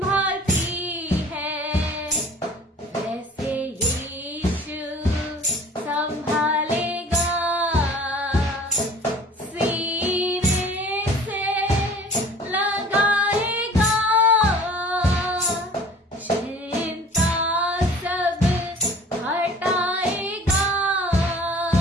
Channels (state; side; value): normal; both; correlation 0.47